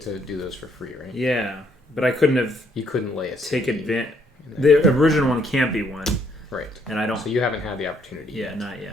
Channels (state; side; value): normal; both; correlation 0.69